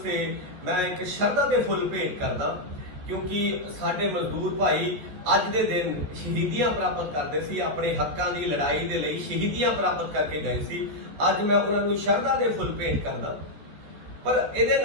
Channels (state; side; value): late; left; 14 ms